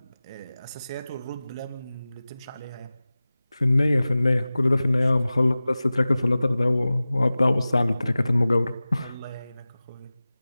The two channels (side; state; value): both; inverted; correlation -0.97